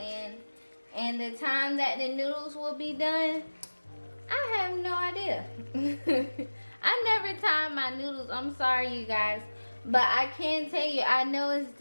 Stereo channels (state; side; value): inverted; both; correlation -1.00